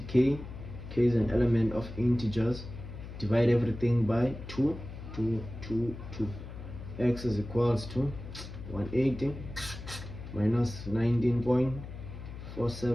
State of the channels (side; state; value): left; noise; hum, 11 dB below the sound